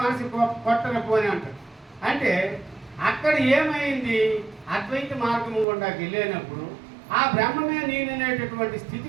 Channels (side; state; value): left; drops out; at 5.7 s